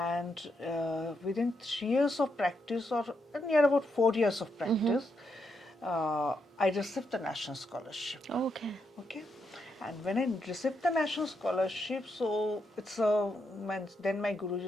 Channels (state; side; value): normal; both; correlation 0.81